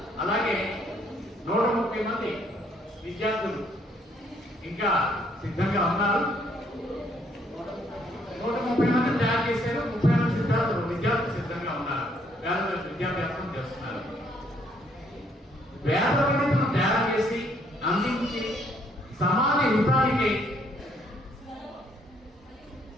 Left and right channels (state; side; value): normal; both; correlation 0.68